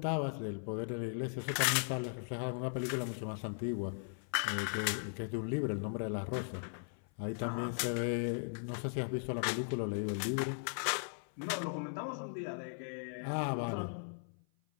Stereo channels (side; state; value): right; silent; 52 dB below the other